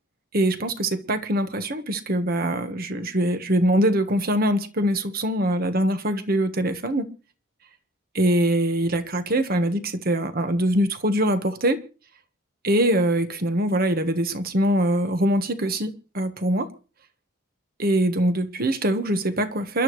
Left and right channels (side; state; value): both; normal; correlation 0.51